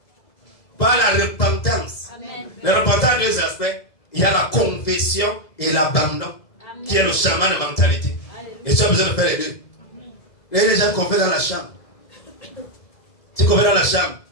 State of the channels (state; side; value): late; right; 1.7 ms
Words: la repentance. Amen. La repentance a deux aspects. Il y a la confession et l'abandon, qui est le chemin de mentalité. Amen. Et tu as besoin de faire les deux. Il y a des gens qu'on fait dans la chambre. Tu confesses dans la chambre,